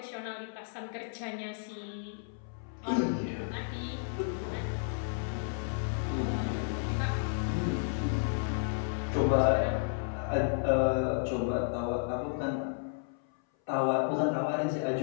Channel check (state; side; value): silent; right; 56 dB below the other